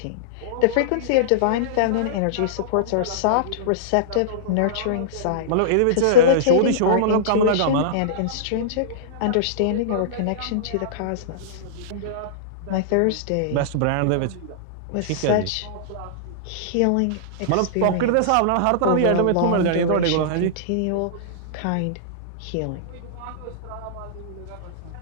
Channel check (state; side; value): different; both; correlation -0.02